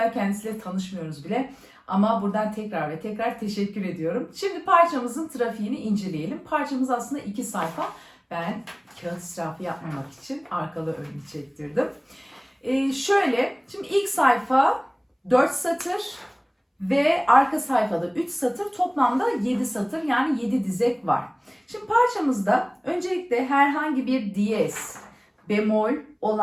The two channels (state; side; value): identical; both; correlation 1.00